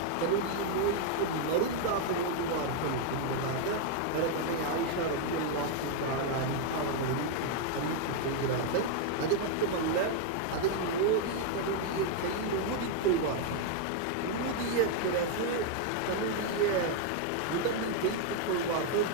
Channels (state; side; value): different; both; correlation 0.00